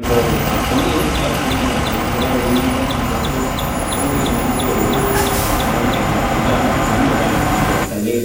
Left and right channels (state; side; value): identical; both; correlation 1.00